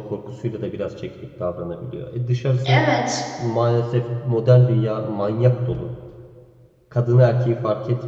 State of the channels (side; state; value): both; identical; correlation 1.00